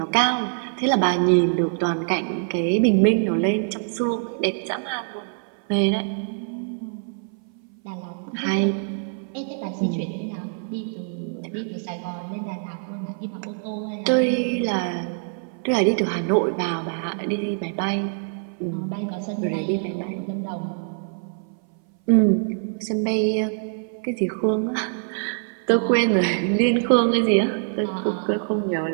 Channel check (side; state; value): left; silent; 59 dB below the other